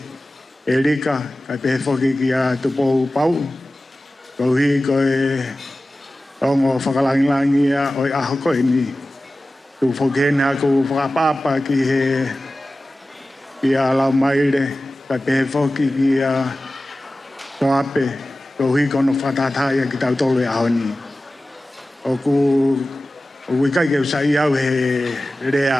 e rika, ka te whoki ki a tupou pau, kau hi koe Ongo whakalangilangi o i aho koe ni. Tu whokena ku whakapapa ki he a lau Maile, ka pehe whoki ki a Soape, ko hui kono whatataya ki tau tolu e aho ni. O wikai ke usai au he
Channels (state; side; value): normal; both; correlation 0.96